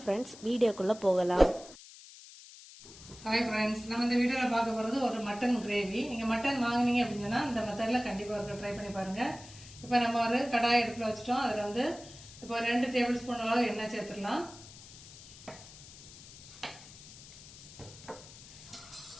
ஃப்ரெண்ட்ஸ், வீடியோக்குள்ளே போகலாம். ஹாய் ஃப்ரெண்ட்ஸ், நம்ம இந்த வீடியோவில் பார்க்க போகிறது ஒரு மட்டன் கிரேவி. நீங்கள் மட்டன் வாங்கினீங்க அப்படின்னு சொன்னால் இந்த மெத்தடில் கண்டிப்பாக ஒரு ட்ரை பண்ணி பாருங்கள். இப்போ நம்ம ஒரு கடாய் அடுப்பில் வச்சுட்டோம். அதில் வந்து இப்போ 2 டேபிள் ஸ்பூன் அளவு எண்ணெய் சேர்த்துடலாம்.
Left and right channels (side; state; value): left; noise; hiss, 18 dB below the sound